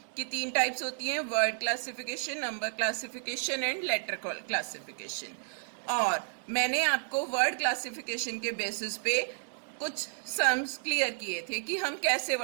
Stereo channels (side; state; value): left; silent; digital silence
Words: कि 3 टाइप्स होती हैं, word classification, number classification and later classification. और मैंने आपको वर्ड क्लासिफिकेशन के बेसिस पे कुछ सम्स क्लियर किए थे कि हम कैसे